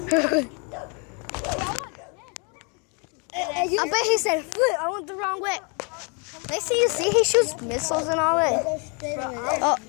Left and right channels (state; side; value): quieter; right; 34.8 dB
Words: I bet he said, flip, I went the wrong way. Next thing you see, he shoots missiles and all that. Oh. Are